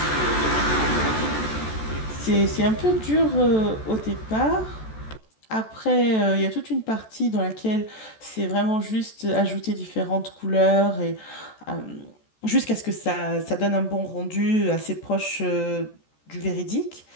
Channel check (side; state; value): right; late; 14 ms